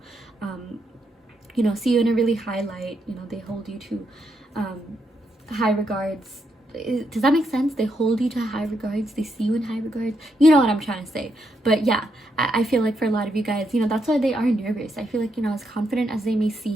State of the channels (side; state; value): both; normal; correlation 0.79